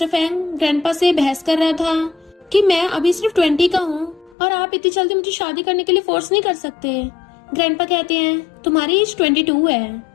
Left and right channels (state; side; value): drops out; right; at 4.4 s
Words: Fang grandpa से बहस कर रहा था कि मैं अभी सिर्फ 20 का हूँ और आप इतनी जल्दी मुझे शादी करने के लिए फोर्स नहीं कर सकते। ग्रैंडपा कहते हैं तुम्हारी एज 22 है,